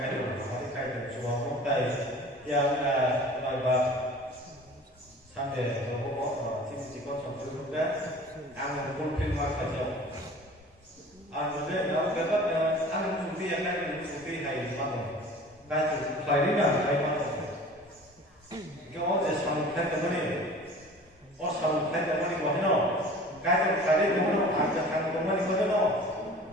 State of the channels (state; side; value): normal; both; correlation 0.43